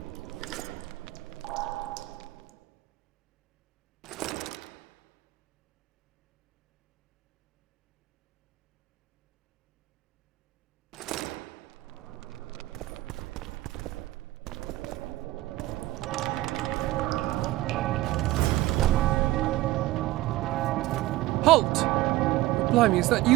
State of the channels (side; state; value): left; quieter; 17.2 dB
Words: Halt! Blimey, is that